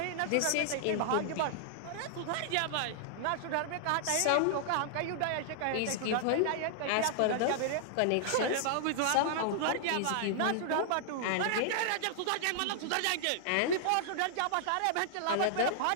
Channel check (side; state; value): both; different; correlation -0.01